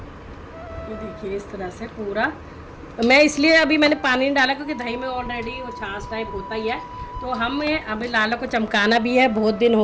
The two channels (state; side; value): identical; both; correlation 1.00